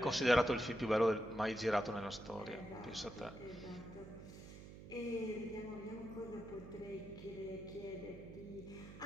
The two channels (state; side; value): noise; right; hum, 14 dB below the sound